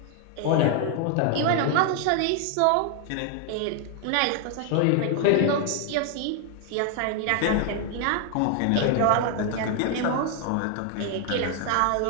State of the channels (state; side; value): different; both; correlation 0.00